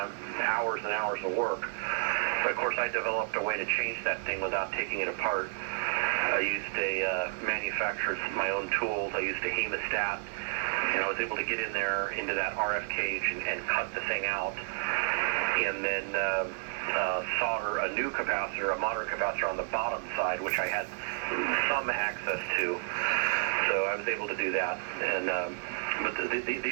hours and hours of work. But of course, I developed a way to change that thing without taking it apart. I used my own tools. I used a hemostat, and I was able to get in there into that RF cage and cut the thing out, and then solder a new capacitor, a modern capacitor on the bottom side, which I had some access to. So I was able to do that. And but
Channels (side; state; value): left; silent; digital silence